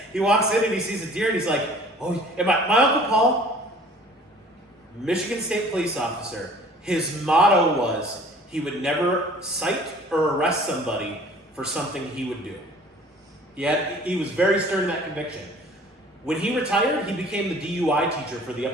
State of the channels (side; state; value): both; normal; correlation 0.50